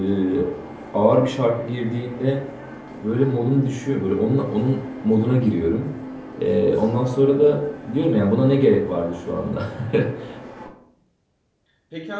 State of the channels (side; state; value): both; identical; correlation 1.00